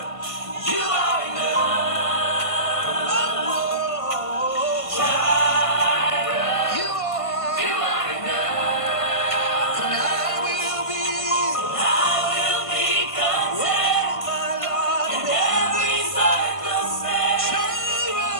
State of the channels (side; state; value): right; late; 1.5 ms